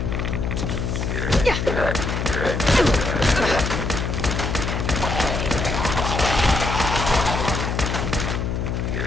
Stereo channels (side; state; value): left; noise; hum, 1 dB below the sound